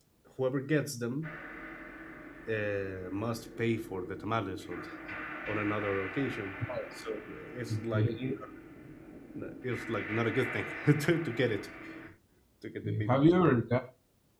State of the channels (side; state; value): both; identical; correlation 1.00